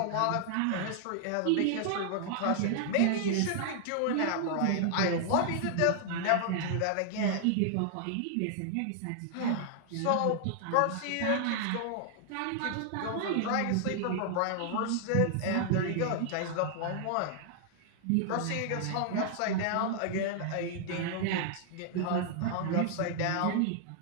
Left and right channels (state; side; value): different; both; correlation 0.00